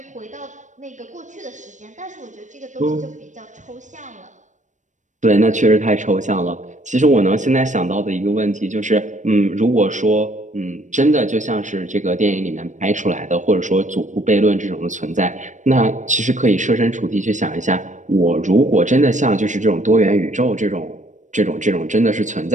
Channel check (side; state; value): left; late; 0.35 ms